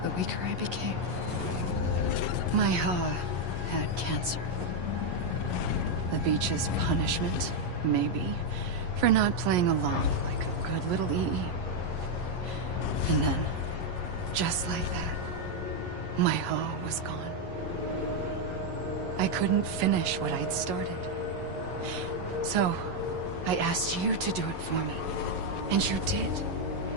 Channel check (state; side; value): late; left; 11 ms